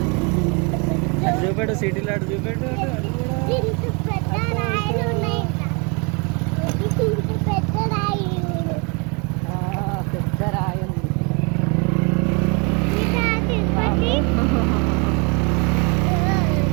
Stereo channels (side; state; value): left; quieter; 32.0 dB